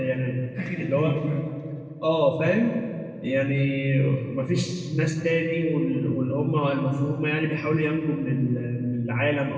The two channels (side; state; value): both; identical; correlation 1.00